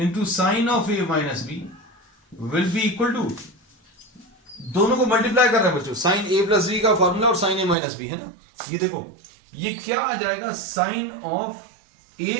sine of a minus b will be equal to, दोनों को मल्टीप्लाई कर रहे हैं बच्चों, साइन a प्लस बी का फॉर्मूला और साइन a माइनस बी, है ना. ये देखो ये क्या आ जाएगा, sine of a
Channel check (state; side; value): drops out; left; at 7.8 s